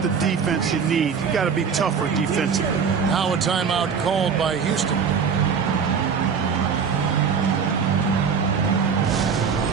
the defense you need. You got to be tougher defensively. Now a timeout called by Houston.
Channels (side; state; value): left; quieter; 6.3 dB